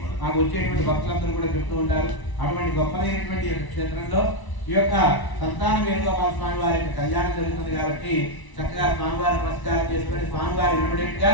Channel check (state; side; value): late; right; 1.0 ms